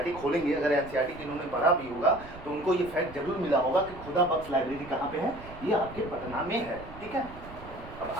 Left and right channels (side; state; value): right; noise; rumble, 16 dB below the sound